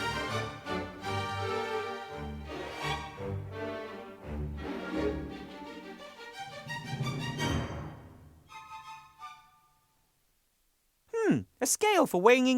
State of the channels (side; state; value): both; identical; correlation 1.00